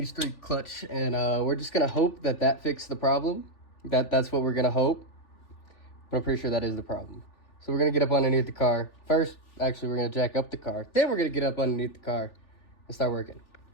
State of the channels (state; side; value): late; right; 3.4 ms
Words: 3 clutch, and we're just gonna hope that that fixed the problem. That's what we're gonna hope. But I'm pretty sure that is the problem. So we're gonna get up underneath the car. First, actually, we're gonna jack up the car. Then we're gonna get up underneath the car and start working.